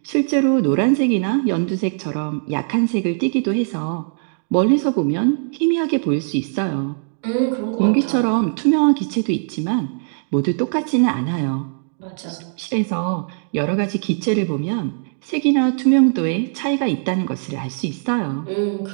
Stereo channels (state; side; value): silent; left; digital silence